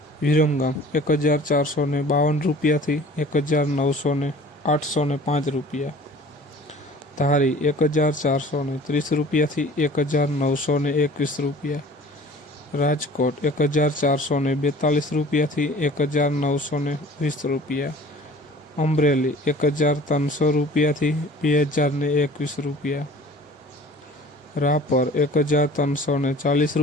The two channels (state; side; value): normal; both; correlation 0.46